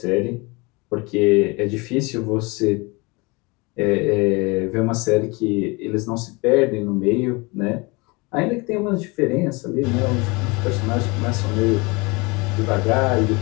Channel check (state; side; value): quieter; right; 26.8 dB